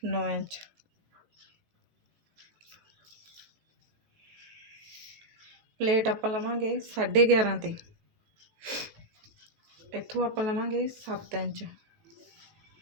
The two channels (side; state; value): left; late; 18 ms